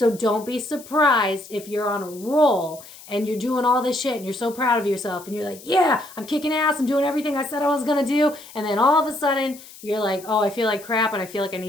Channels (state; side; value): noise; left; hiss, 19 dB below the sound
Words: don't be surprised if you're on a roll and you're doing all this shit and you're so proud of yourself and you're like, yeah, I'm kicking ass. I'm doing everything I said I was going to do. And then all of a sudden you're like, oh, I feel like crap and I feel like I